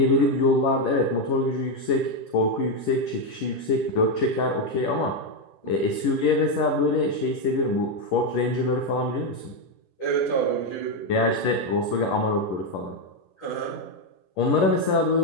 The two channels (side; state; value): right; late; 11 ms